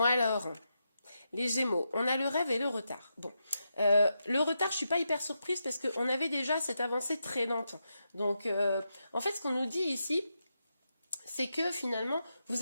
alors, les Gémeaux, on a le rêve et le retard. Bon, le retard, je ne suis pas hyper surprise parce qu'on avait déjà cette avancée très lente. Donc, en fait, ce qu'on nous dit ici, c'est que finalement, vous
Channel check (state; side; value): inverted; both; correlation -0.86